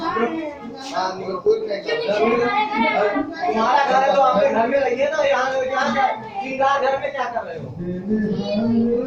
हाँ निकल कोई नहीं तुम्हारा घर है तो आपके घर में रहिए ना यहाँ क्या श्रृंगार घर में क्या कर रहे हो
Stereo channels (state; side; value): identical; both; correlation 1.00